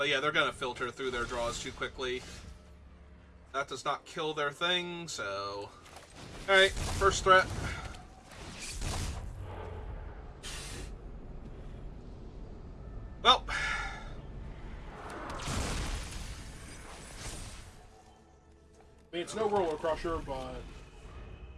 yeah, they're going to filter through their draws too quickly. That does not kill their thing, so... Alright, first threat. Well... I mean, it's no Roller Crusher, but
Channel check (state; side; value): identical; both; correlation 1.00